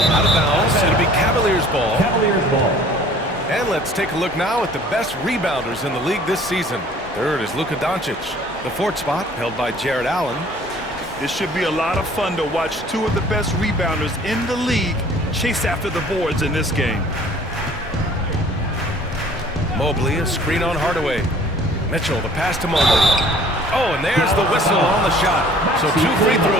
Out of bounds. It'll be Cavaliers ball. Caverliers ball. And let's take a look now at the best rebounders in the league this season. 3rd is Luka Doncic. The 4th spot held by Jared Allen. It should be a lot of fun to watch 2 of the best rebounders in the league chase after the boards in this game. Mobley, a screen on Hardaway. Mitchell, the pass to Mobley. Oh, and there's the whistle on the shot. So 2 free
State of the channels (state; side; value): normal; both; correlation 0.52